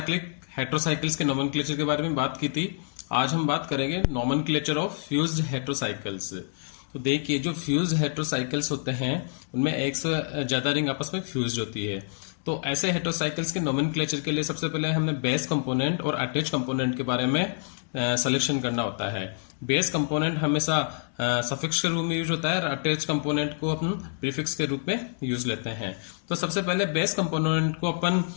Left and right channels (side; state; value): right; silent; digital silence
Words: हेट्रोसाइकिल्स के नोमेनक्लेचर के बारे में बात की थी। आज हम बात करेंगे नोमेनक्लेचर ऑफ फ्यूज्ड हेट्रोसाइकिल्स। तो देखिए, जो फ्यूज्ड हेट्रोसाइकिल्स होते हैं उनमें एक से ज्यादा रिंग आपस में फ्यूज्ड होती है। तो ऐसे हेट्रोसाइकिल्स के नोमेनक्लेचर के लिए सबसे पहले हमें बेस कंपोनेंट और अटैच कंपोनेंट के बारे में सिलेक्शन करना होता है। बेस कंपोनेंट हमेशा सफिक्स के रूप में यूज होता है और अटैच कंपोनेंट को अपन प्रीफिक्स के रूप में यूज लेते हैं। तो सबसे पहले बेस कंपोनेंट को अपन